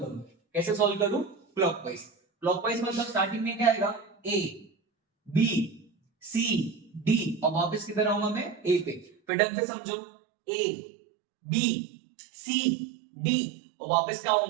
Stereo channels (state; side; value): drops out; left; at 9.1 s